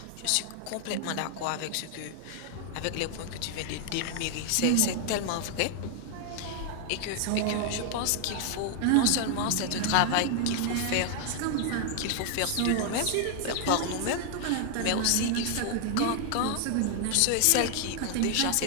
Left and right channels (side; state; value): both; different; correlation 0.00